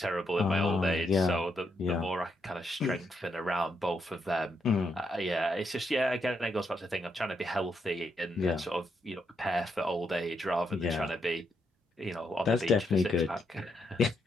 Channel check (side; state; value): both; normal; correlation 0.79